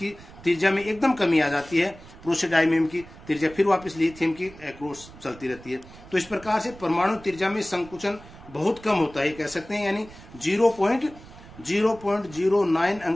त्रिज्या में एकदम कमी आ जाती है, प्रोसोडाइमियम की त्रिज्या फिर वापस लिथियम की अक्रॉस चलती रहती है, तो इस प्रकार से परमाणु त्रिज्या में संकुचन बहुत कम होता है, कह सकते हैं, यानी 0.09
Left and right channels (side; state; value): right; noise; rumble, 19 dB below the sound